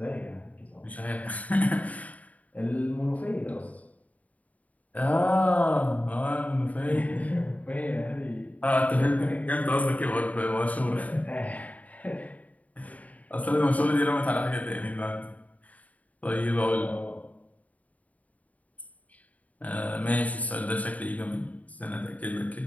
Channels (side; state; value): right; late; 0.071 ms